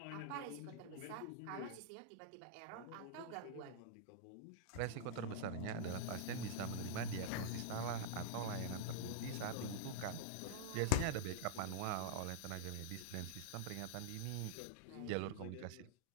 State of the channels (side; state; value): both; different; correlation -0.01